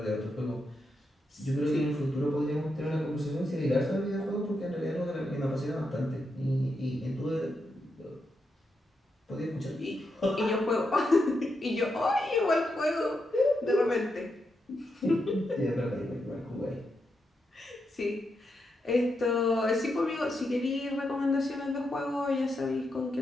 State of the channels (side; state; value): both; normal; correlation 0.84